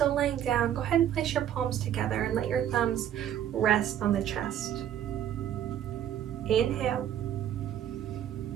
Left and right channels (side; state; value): left; quieter; 10.5 dB